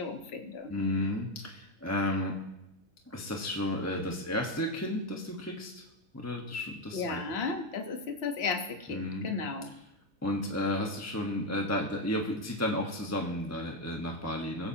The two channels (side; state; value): both; normal; correlation 0.08